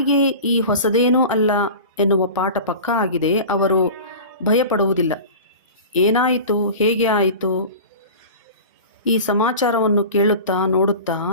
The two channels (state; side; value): inverted; both; correlation -0.35